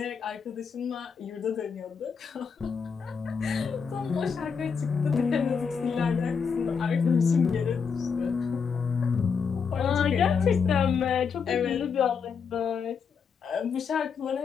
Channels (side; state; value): right; quieter; 6.0 dB